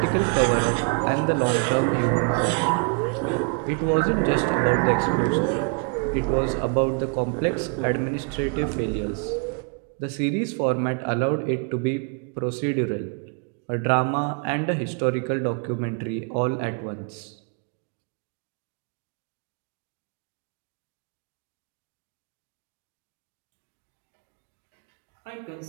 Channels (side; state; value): left; quieter; 37.2 dB